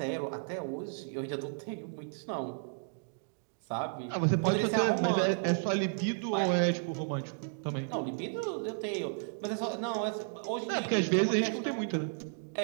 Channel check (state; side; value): silent; left; digital silence